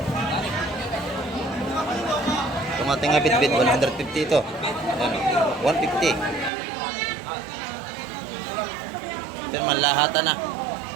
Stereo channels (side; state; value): left; drops out; at 6.5 s